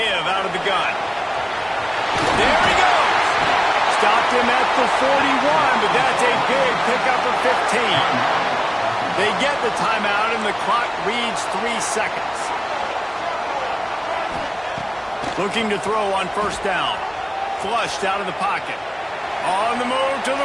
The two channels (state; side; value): identical; both; correlation 1.00